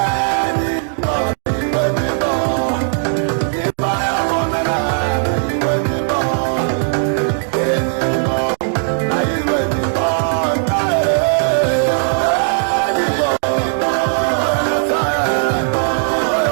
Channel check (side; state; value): left; silent; digital silence